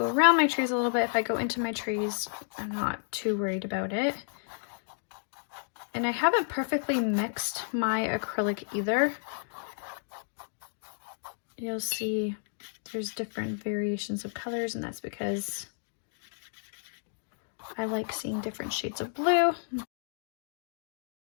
around my trees a little bit. If I go into my trees, I'm not too worried about it. And I haven't perfectly mixed my acrylic either. You'll see there's different variations of colors, and that's because I like seeing different shades of blue.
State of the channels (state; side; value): silent; right; digital silence